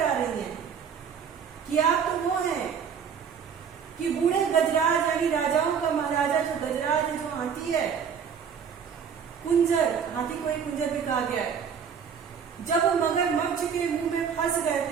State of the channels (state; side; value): quieter; left; 7.1 dB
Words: रही हैं कि आप तो वो हैं कि बूढ़े गजराज यानी राजाओं का महाराजा जो गजराज है, जो हाथी है, कुंजर, हाथी को ही कुंजर भी कहा गया है, जब वो मगरमच्छ के मुंह में फंस गए